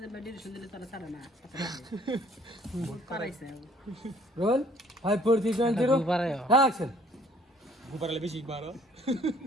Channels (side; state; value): both; normal; correlation 0.58